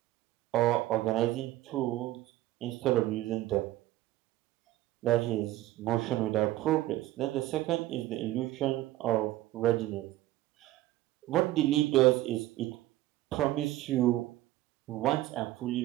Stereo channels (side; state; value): left; quieter; 15.9 dB